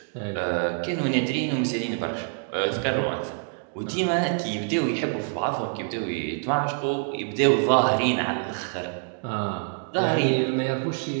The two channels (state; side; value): silent; left; 61 dB below the other